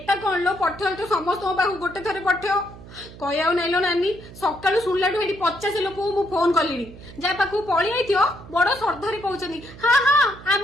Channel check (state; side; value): noise; right; hum, 17 dB below the sound